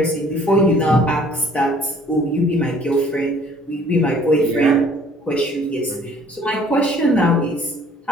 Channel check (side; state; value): both; normal; correlation 0.56